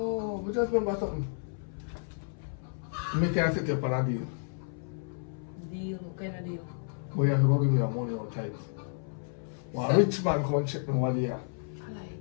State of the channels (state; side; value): silent; right; 57 dB below the other